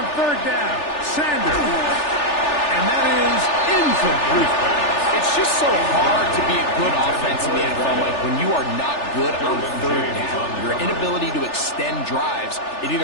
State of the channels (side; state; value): right; late; 3.4 ms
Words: third down, Sanders. And that is incomplete. It's It's just so hard to be a good offense in the NFL, Mike, when you are not good on third down. Your inability to extend drives, it